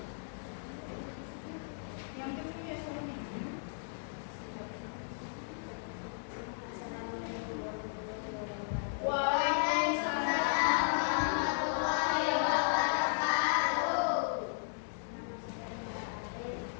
Yang kecil ya soalnya. Waalaikumsalam warahmatullahi wabarakatuh.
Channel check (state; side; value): silent; right; digital silence